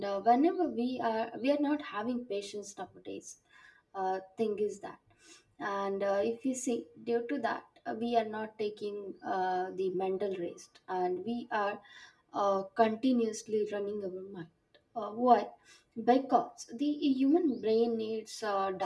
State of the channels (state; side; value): identical; both; correlation 1.00